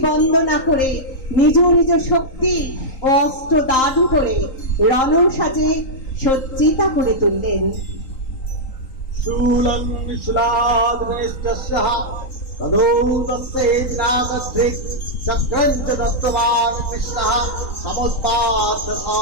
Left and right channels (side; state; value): right; late; 3.8 ms